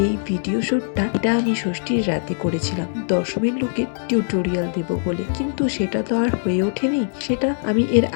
এই ভিডিও শুটটা এটা আমি ষষ্ঠীর রাতে করেছিলাম দশমীর লুকের টিউটোরিয়াল দেব বলে, কিন্তু সেটা তো আর হয়ে ওঠেনি। সেটা আমি এর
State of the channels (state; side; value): silent; right; digital silence